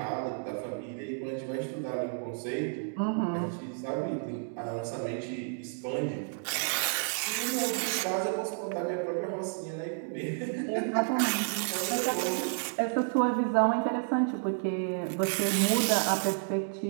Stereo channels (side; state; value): left; silent; digital silence